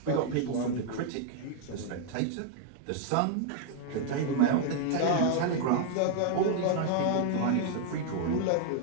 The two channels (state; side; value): different; both; correlation 0.00